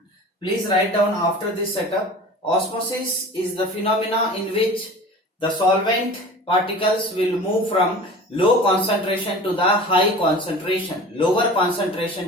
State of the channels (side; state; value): both; normal; correlation 0.39